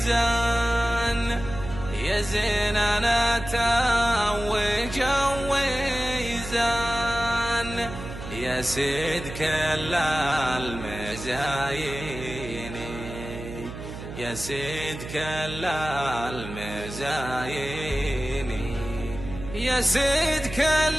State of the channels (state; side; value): noise; right; hum, 10 dB below the sound